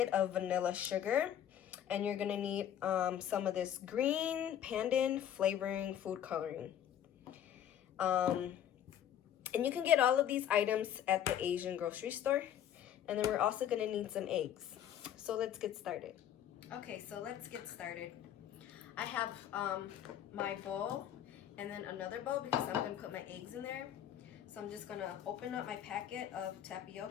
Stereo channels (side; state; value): right; quieter; 10.2 dB